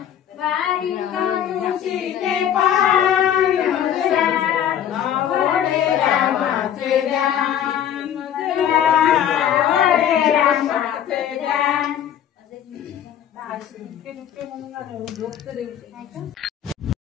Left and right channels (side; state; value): right; quieter; 9.9 dB